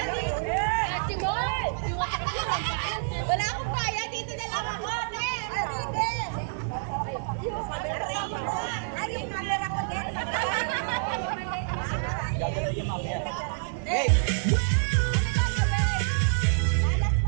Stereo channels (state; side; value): silent; left; 60 dB below the other